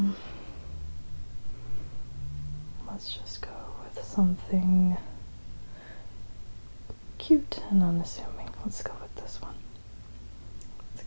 Let's just go with something cute and unassuming. Let's go with this one. It's a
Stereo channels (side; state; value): both; inverted; correlation -1.00